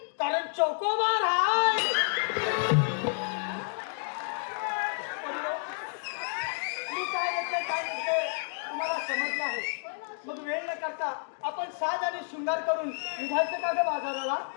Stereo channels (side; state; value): right; silent; digital silence